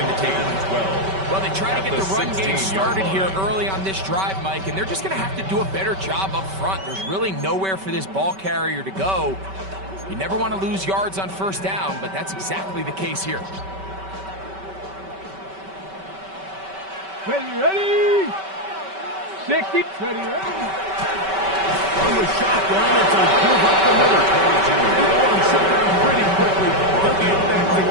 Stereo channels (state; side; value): late; left; 5.2 ms